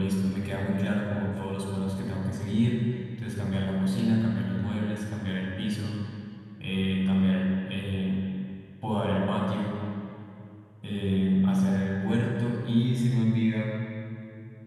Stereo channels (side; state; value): both; identical; correlation 1.00